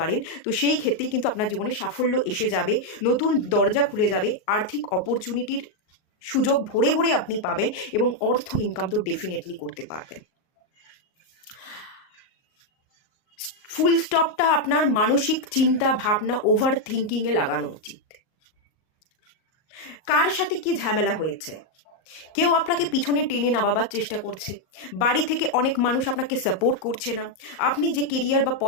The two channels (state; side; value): late; right; 38 ms